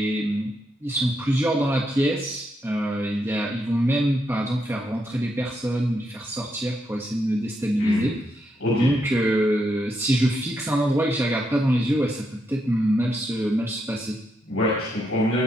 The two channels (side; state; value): both; normal; correlation 0.80